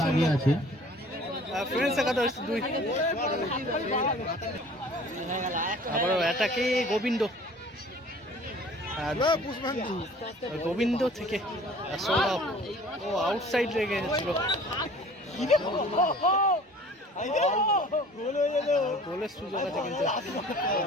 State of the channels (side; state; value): both; normal; correlation 0.48